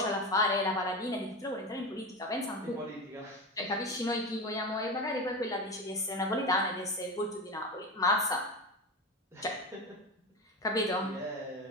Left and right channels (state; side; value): normal; both; correlation 0.22